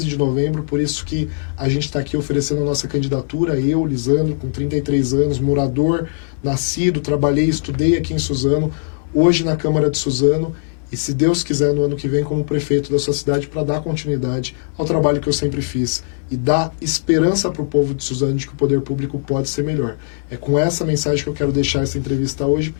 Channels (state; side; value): silent; right; digital silence